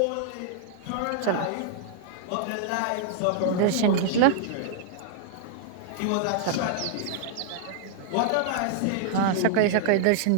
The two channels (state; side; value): different; both; correlation -0.01